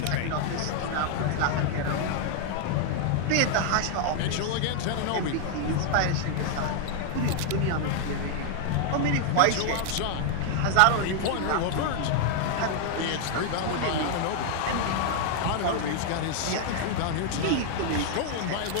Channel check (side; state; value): both; different; correlation 0.00